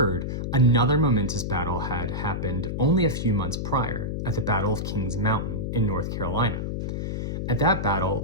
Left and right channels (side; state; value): left; noise; hum, 3 dB below the sound